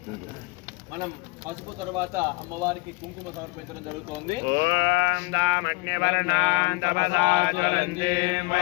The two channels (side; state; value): right; quieter; 25.8 dB